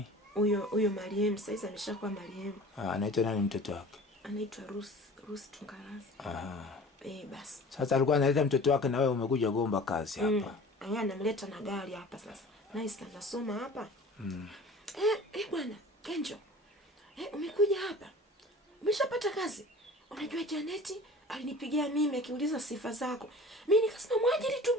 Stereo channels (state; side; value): normal; both; correlation 0.42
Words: Huyo Mariam, sasa ameshakuwa Mariam. Anaitwa nani mtoto wake? Anaitwa Rusi Tungarazi. Basi. Sasa alikuwa analeta mtoto wake na wewe umekuja gomba kazi hapa. Anamleta na gari hapa sasa. Nice, anasoma hapa. Bwana, Kenjo. Umekuja hapa. Umeshapata kazi. Unajua Janeti alinipigia mimi akiuliza sifa zako. Mimi nikasema mwajiri tu